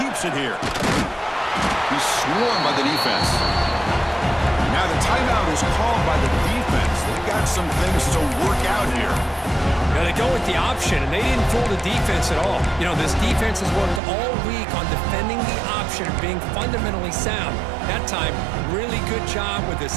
it here. He's swarmed by the defense. And now the timeout is called by the defense. They've got some things to work out here. Now they go with the option, and they didn't fool the defense at all. You know, this defense has worked all week on defending the option, being fundamentally sound. That time, really good job with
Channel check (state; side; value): drops out; left; at 14.0 s